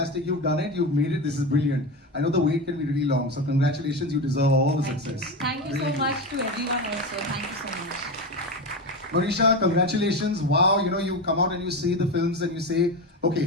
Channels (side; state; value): both; normal; correlation 0.20